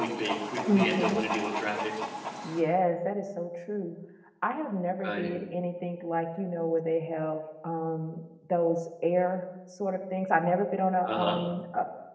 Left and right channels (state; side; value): identical; both; correlation 1.00